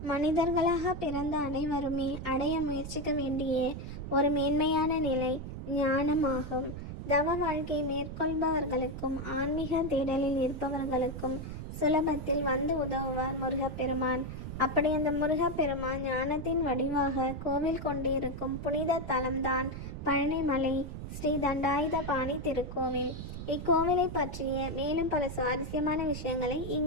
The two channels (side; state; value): right; noise; rumble, 8 dB below the sound